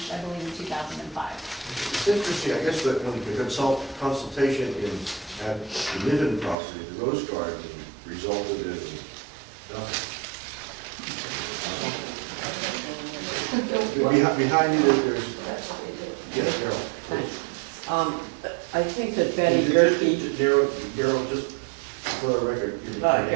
I believe, in 2005. It's interesting, I guess, that when the consultation at the Niven property, the Rose Garden, resulted in nothing. Behind you, there's, That's what they did. yes, Carol. I think that Betty Gerke, Carol, just for the record. your name,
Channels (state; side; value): drops out; left; at 6.6 s